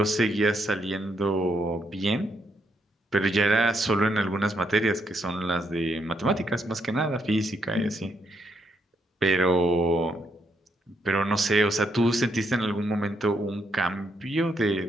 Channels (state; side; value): normal; both; correlation 0.76